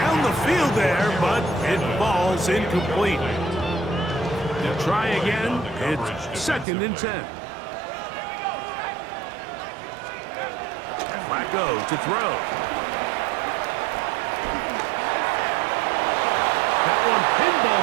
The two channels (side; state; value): left; drops out; at 6.7 s